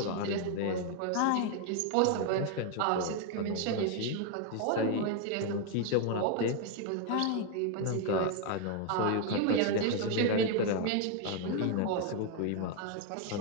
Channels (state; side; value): different; both; correlation 0.01